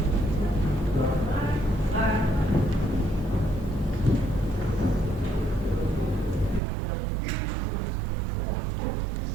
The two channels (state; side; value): drops out; left; at 6.6 s